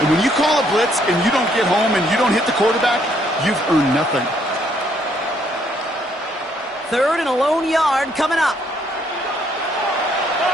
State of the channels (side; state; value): both; normal; correlation 0.69